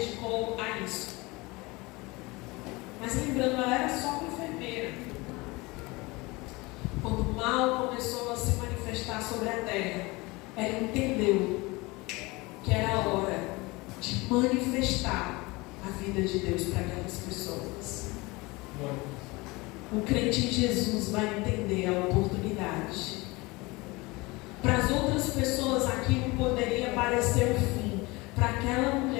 a isso. Mas lembrando, ela era só uma enfermeira. Quando o mal começou a se manifestar sobre a terra, ela entendeu que era a hora de manifestar a vida de Deus para aquelas pessoas. O crente em Jesus vai entender a oportunidade. Para as outras pessoas aquilo poderia parecer o fim. Para aquela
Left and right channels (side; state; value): right; quieter; 23.7 dB